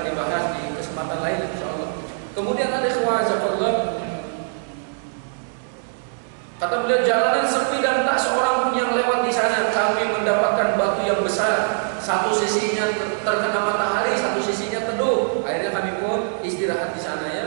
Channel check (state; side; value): silent; left; 62 dB below the other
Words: dibahas di kesempatan lain insyaallah. Kemudian ada Allah, kata beliau, jalanan sepi dan tak seorang pun yang lewat di sana. Kami mendapatkan batu yang besar, satu sisinya terkena matahari, satu sisinya teduh. Akhirnya kami pun istirahat di sana ya,